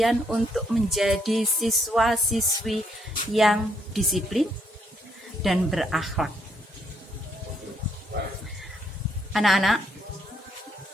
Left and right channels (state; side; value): normal; both; correlation 0.73